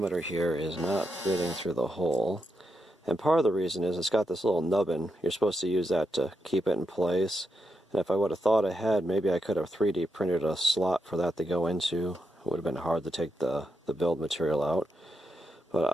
here is not fitting through the hole. And part of the reason is it's got this little nubbin. You're supposed to use that to keep it in place. And if I would have thought ahead, maybe I could have 3D printed a slot for that to go into. It would have been hard to take the build material out. But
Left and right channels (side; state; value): both; normal; correlation 0.84